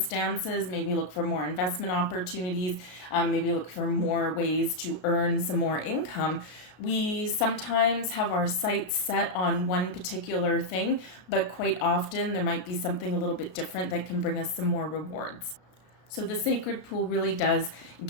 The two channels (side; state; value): right; late; 33 ms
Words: maybe look for more investment opportunities, maybe look for more ways to earn some more income, we sometimes have our sights set on one particular thing, but quite often there might be something a little bit different that can bring us some more rewards. So the sacred pool really does